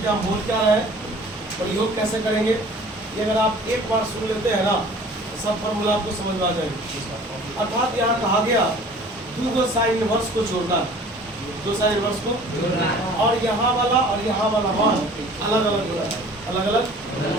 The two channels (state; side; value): normal; both; correlation 0.48